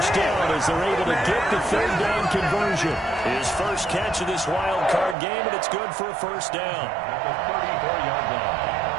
down as they're able to get the 3rd down conversion. His first catch of this wild card game, and it's good for a first down. At the 34-yard line.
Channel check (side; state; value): left; drops out; at 5.2 s